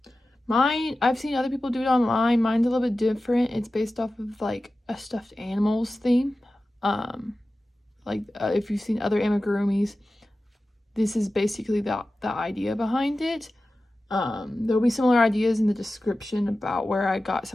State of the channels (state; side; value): normal; both; correlation 0.95